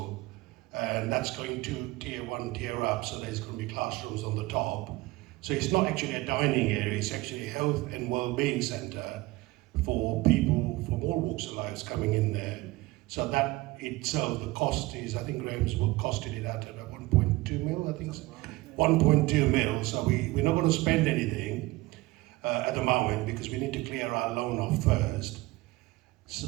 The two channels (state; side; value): quieter; left; 20.6 dB